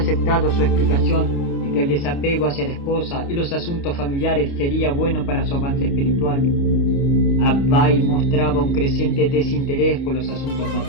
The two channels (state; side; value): late; right; 29 ms